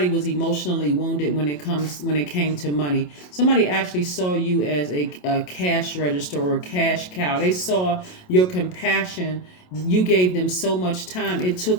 was emotionally wounded when it came to money. Somebody actually saw you as a cash register or a cash cow. They saw your compassion. You gave them so much time. It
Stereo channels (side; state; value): right; late; 27 ms